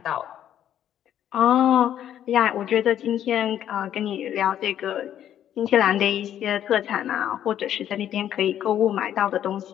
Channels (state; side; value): quieter; right; 10.7 dB